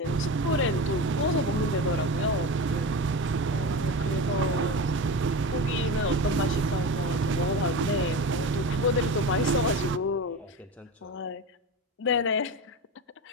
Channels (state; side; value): normal; both; correlation 0.25